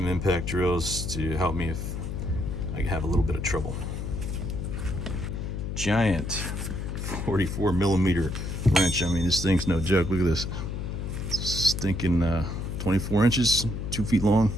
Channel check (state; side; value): noise; left; hum, 4 dB below the sound